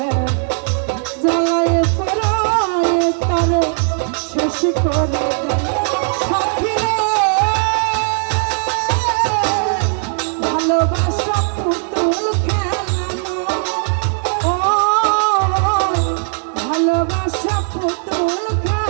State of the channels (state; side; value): silent; left; 58 dB below the other